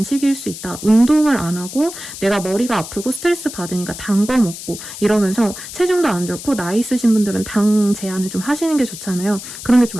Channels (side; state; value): left; noise; hiss, 11 dB below the sound